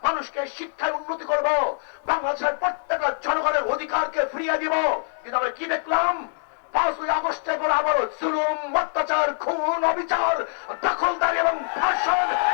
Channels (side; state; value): right; silent; digital silence